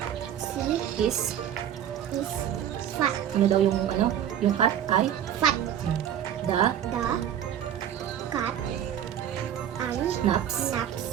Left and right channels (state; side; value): quieter; left; 10.1 dB